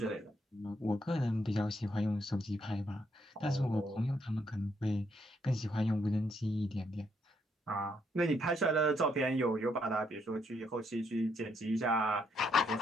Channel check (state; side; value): normal; both; correlation 0.74